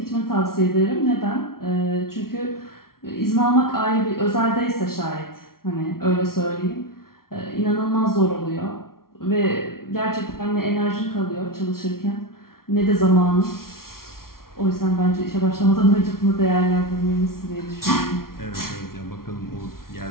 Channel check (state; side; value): late; right; 0.93 ms